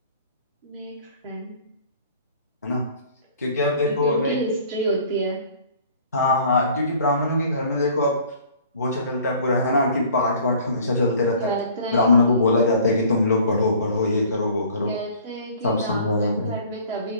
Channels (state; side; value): inverted; both; correlation -0.51